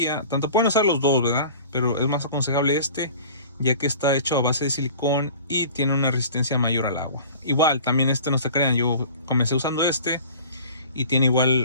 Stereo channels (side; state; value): both; inverted; correlation -0.43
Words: tanto pueden usar los dos, ¿verdad? Pero es más aconsejable ya que está hecho a base de silicón y tiene una resistencia mayor al agua. Igual, también no se crean, yo comencé usando y tiene